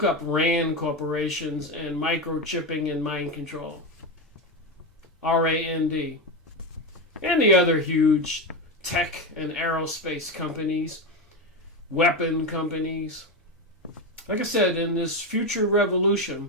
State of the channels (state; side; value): normal; both; correlation 0.15